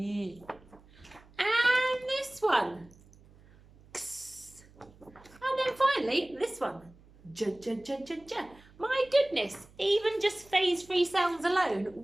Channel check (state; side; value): noise; right; hum, 26 dB below the sound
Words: And this one. Ks. And then finally, this one. J, j, j, j, j. My goodness, even just phase 3 sounds alone,